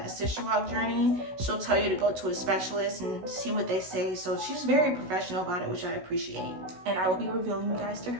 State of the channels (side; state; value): left; late; 16 ms